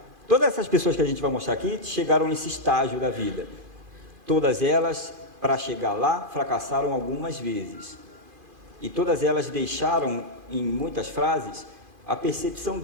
Todas essas pessoas que a gente vai mostrar aqui chegaram nesse estágio da vida. Todas elas, para chegar lá, fracassaram algumas vezes. E todas elas deixaram, em muitas frases, a percepção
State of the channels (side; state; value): left; late; 2.5 ms